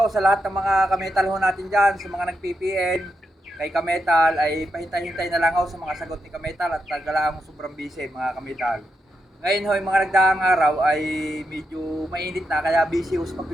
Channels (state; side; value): normal; both; correlation 0.84